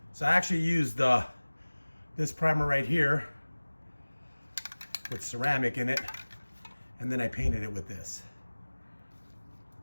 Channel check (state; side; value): inverted; both; correlation -1.00